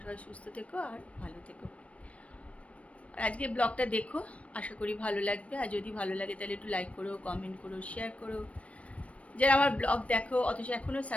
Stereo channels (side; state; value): right; late; 0.064 ms